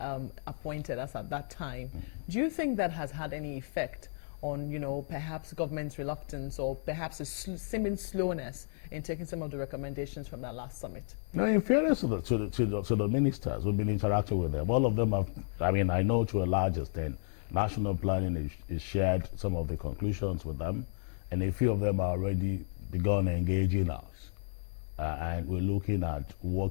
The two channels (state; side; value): silent; right; digital silence